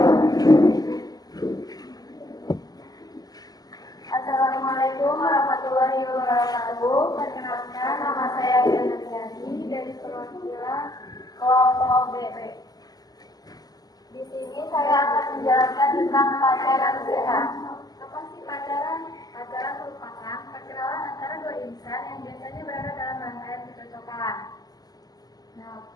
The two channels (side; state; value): right; late; 0.18 ms